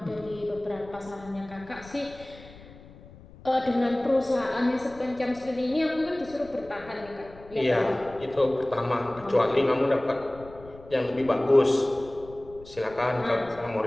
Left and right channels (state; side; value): noise; left; rumble, 20 dB below the sound